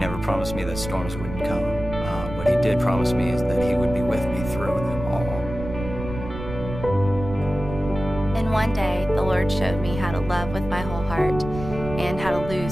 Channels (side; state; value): right; noise; rumble, 9 dB below the sound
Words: promised me that storms wouldn't come. What he did promise me is that he would be with me through them all. And one day, the Lord showed me how to love with my whole heart and how to